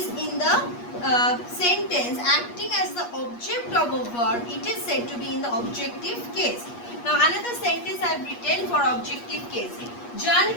in the sentence acting as the object of a verb, it is said to be in the objective case. Now another sentence I have written for objective case.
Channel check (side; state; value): right; late; 8.4 ms